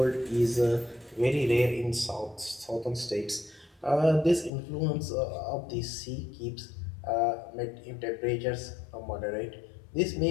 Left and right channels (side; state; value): right; drops out; at 4.5 s